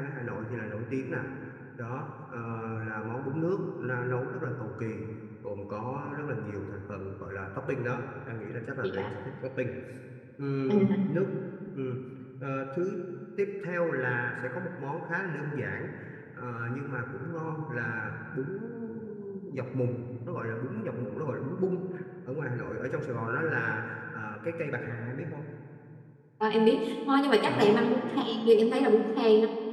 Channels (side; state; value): both; identical; correlation 1.00